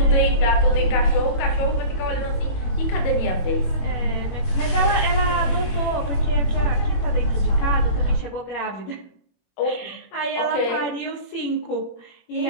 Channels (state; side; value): late; right; 21 ms